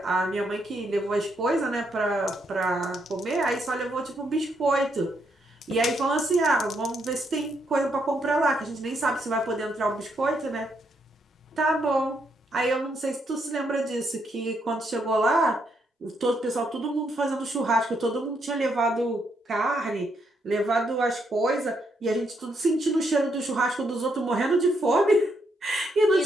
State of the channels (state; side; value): normal; both; correlation 0.76